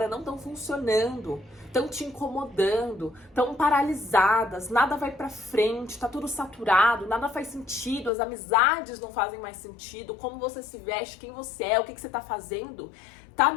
não estão funcionando, estão te incomodando, estão paralisadas, nada vai pra frente, tá tudo saturado, nada faz sentido, as amizades não fazem mais sentido, como você se veste, quem você é, o que você tá fazendo, tá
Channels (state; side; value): drops out; right; at 8.1 s